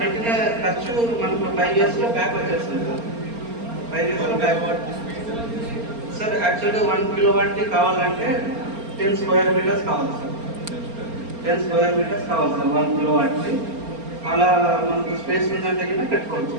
పెట్టిన ఖర్చు మనకు 5 yearsలో బ్యాక్ వచ్చేస్తుంది సార్. 5 yearsలో బ్యాక్ సార్. యాక్చువల్గా 1 kilowatt కావాలంటే 10 square meters కావాలి సార్. 10 square meters కావాలి సార్ 1 kilowatt. అలా మనకు స్పేస్ ఉందంటే కూడా పెట్టుకోవచ్చు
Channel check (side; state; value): left; late; 4.3 ms